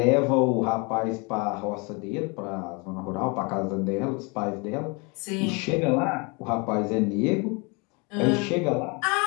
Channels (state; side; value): quieter; right; 30.2 dB